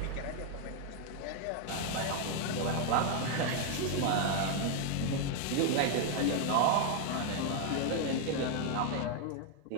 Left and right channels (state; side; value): different; both; correlation 0.00